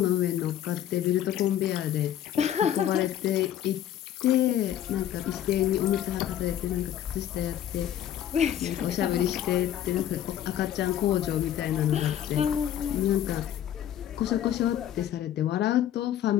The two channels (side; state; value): right; quieter; 10.9 dB